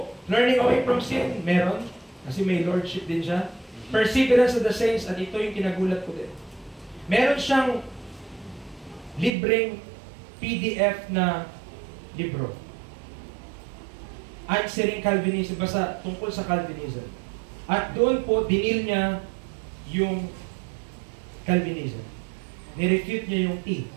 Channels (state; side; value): drops out; left; at 9.3 s